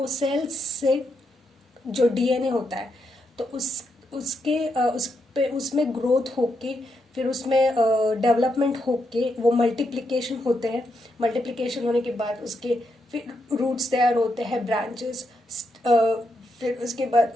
सेल्स से जो डीएनए होता है, तो उसमें ग्रोथ होके फिर उसमें डेवलपमेंट होके वो मल्टीप्लिकेशन होते हैं. मल्टीप्लिकेशन होने के बाद उसके फिर रूट्स तैयार होते हैं, ब्रांचेस, फिर उसके बाद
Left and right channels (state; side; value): normal; both; correlation 0.81